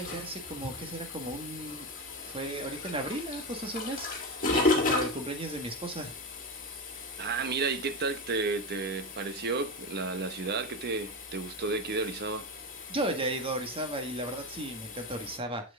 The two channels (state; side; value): normal; both; correlation 0.17